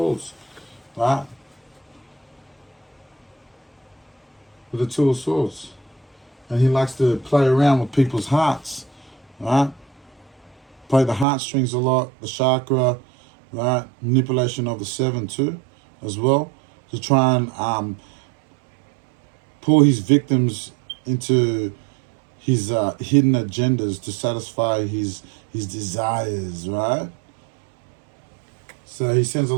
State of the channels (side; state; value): left; drops out; at 11.2 s